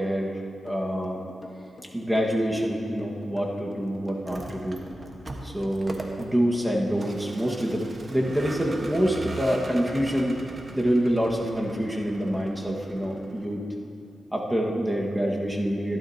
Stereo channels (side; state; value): both; normal; correlation 0.94